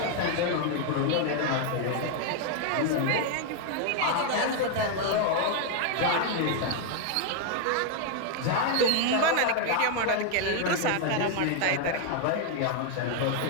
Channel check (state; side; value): different; both; correlation 0.00